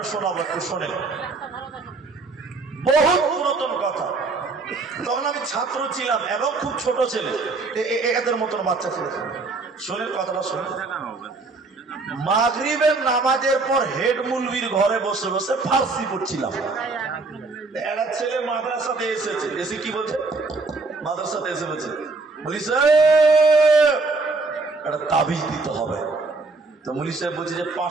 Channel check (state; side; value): quieter; left; 3.7 dB